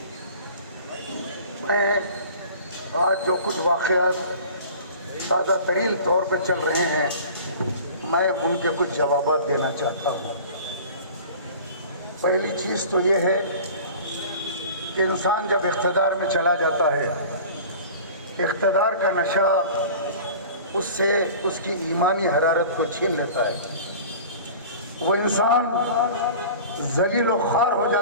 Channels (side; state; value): both; inverted; correlation -0.41